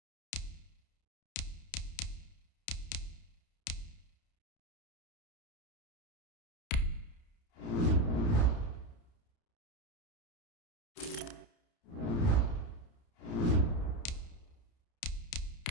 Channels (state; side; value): late; right; 30 ms